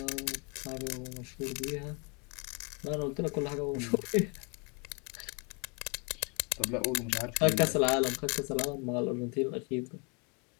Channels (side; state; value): right; quieter; 33.5 dB